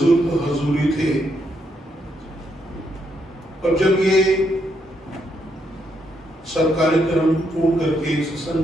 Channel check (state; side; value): normal; both; correlation 0.77